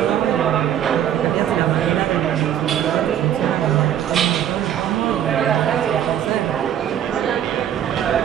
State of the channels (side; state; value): left; quieter; 10.3 dB